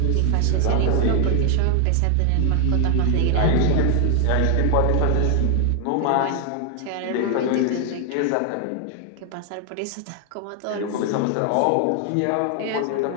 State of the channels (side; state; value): both; different; correlation 0.00